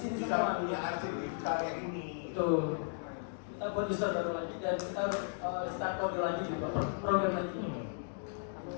bisa semua. punya arsip digital kayak ini. itu. Kita buat user baru lagi dan kita harus start kode lagi juga program lagi.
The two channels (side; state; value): right; silent; digital silence